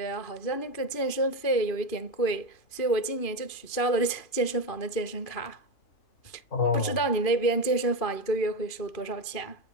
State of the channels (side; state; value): right; late; 2.5 ms